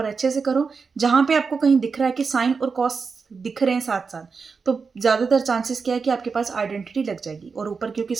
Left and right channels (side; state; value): left; quieter; 5.1 dB